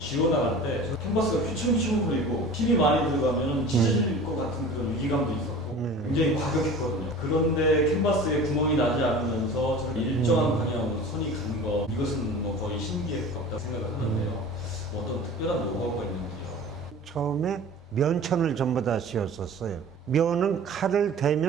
지워나갈 때 캔버스가 휘청휘청 거리고 힘이 많이 들어가면 찢어질 것 같은 그런 위기감도 있었고 굉장히 과격했거든요. 그런데 캔버스에 구멍이 나지 않으면서 저렇게 일정한 방향으로 손이 간 거, 이것은 뭐 거의 신기에 가깝다 생각을 하는데요. 어떤 특별한 노하우가 있는지요? 처음에 면천을 전부 다 씌웠었어요. 면은 칼을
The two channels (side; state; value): both; normal; correlation 0.40